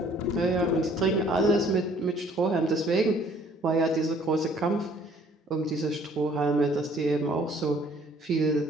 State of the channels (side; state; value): both; normal; correlation 0.58